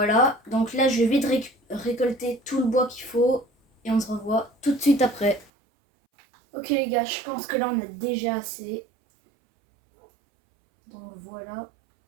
donc là je vais vite récolter tout le bois qu'il faut et on se revoit tout de suite après. Ok les gars, je pense que là on a déjà assez. Donc voilà,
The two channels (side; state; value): left; drops out; at 5.5 s